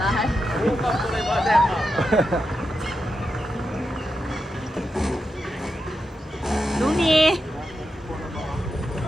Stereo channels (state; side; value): normal; both; correlation 0.88